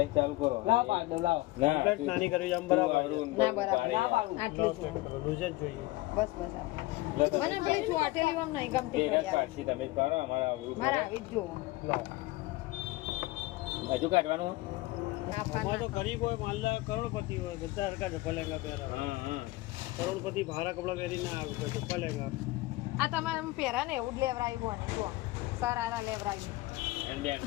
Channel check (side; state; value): right; quieter; 19.6 dB